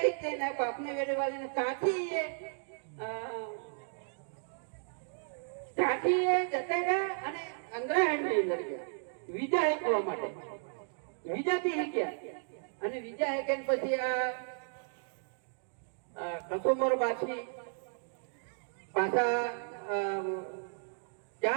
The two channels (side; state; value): left; silent; digital silence